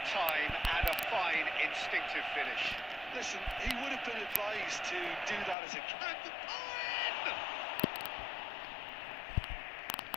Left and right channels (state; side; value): drops out; right; at 5.6 s